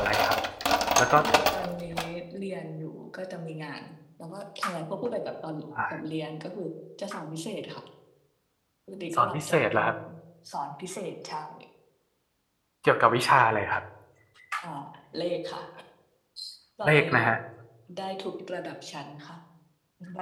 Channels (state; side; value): identical; both; correlation 1.00